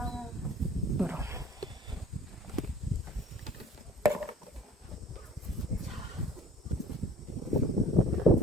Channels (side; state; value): both; normal; correlation 0.48